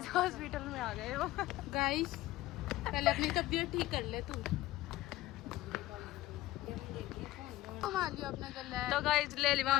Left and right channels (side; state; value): right; quieter; 16.3 dB